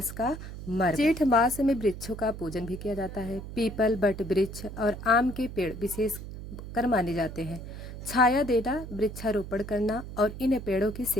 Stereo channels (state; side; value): noise; right; hum, 10 dB below the sound